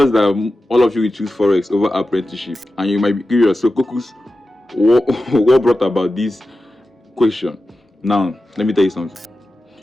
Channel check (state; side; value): normal; both; correlation 0.93